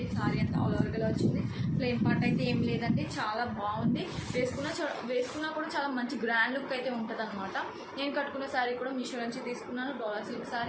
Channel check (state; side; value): identical; both; correlation 1.00